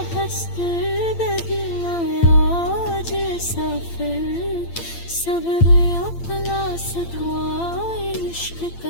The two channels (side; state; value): right; late; 8.8 ms